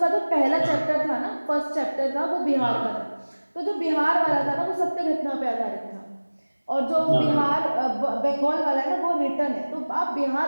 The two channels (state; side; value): inverted; both; correlation -1.00